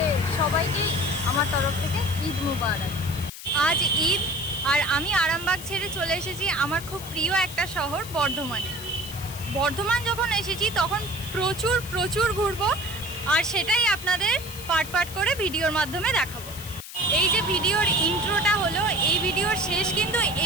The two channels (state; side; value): noise; left; hiss, 13 dB below the sound